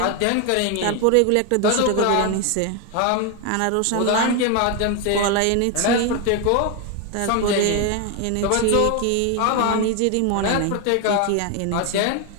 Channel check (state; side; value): different; both; correlation 0.01